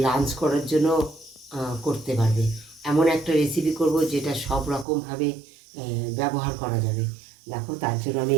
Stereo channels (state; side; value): drops out; left; at 4.9 s